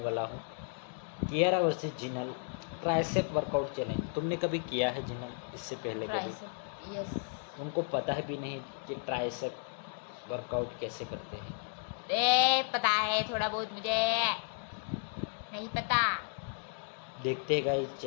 हूँ Kiara versus Jinal tricep workout challenge. तुमने कभी किया है जिनल इससे पहले? कभी यस। उनको पता है भी नहीं कि ट्राइसेप वर्कआउट कैसे करते हैं। पता है थोड़ा बहुत, मुझे नहीं पता। देखते हैं गाइस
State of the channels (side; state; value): right; silent; 55 dB below the other